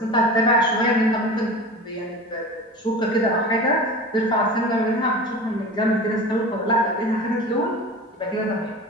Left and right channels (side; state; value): both; normal; correlation 0.33